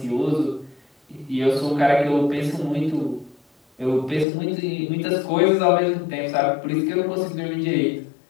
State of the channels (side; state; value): right; drops out; at 4.2 s